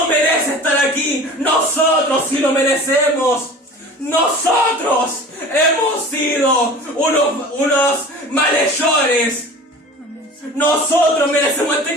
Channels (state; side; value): normal; both; correlation 0.39